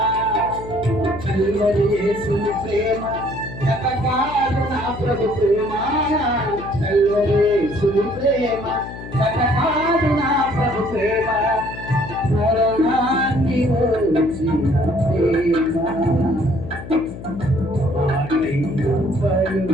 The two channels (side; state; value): left; noise; hum, 12 dB below the sound